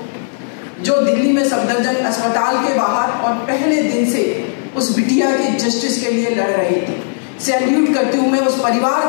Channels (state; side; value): silent; right; digital silence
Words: जो दिल्ली में सफदरजंग अस्पताल के बाहर और पहले दिन से उस बिटिया के जस्टिस के लिए लड़ रही थी। सैल्यूट करती हूँ मैं उस परिवार